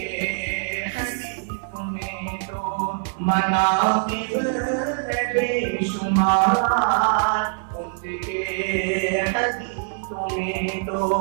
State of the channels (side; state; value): left; silent; 63 dB below the other